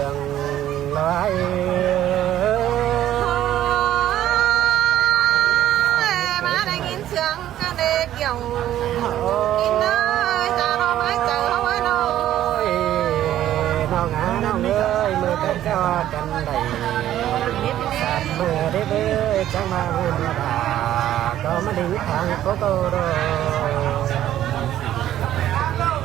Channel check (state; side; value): quieter; left; 12.4 dB